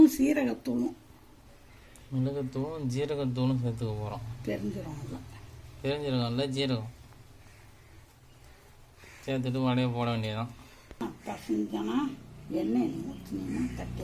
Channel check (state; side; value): identical; both; correlation 1.00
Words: சீரகத்தூளும் மிளகுத்தூளும் ஜீரகத்தூளும் சேர்த்துக்க போகிறோம். பெருஞ்சீரகம் இல்லை, ஜீரகம் சேர்த்துட்டு வடையை போட வேண்டியதுதான். பசஞ்சனா எண்ணெய் ஊற்றினா